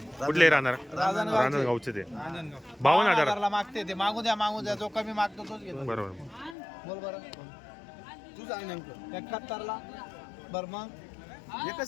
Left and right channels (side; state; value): right; drops out; at 6.6 s